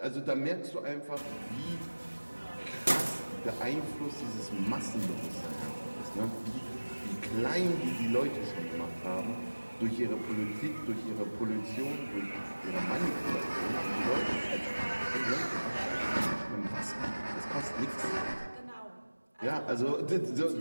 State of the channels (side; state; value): both; inverted; correlation -1.00